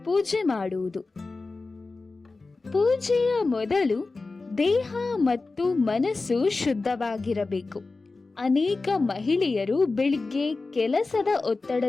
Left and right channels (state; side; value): quieter; right; 3.7 dB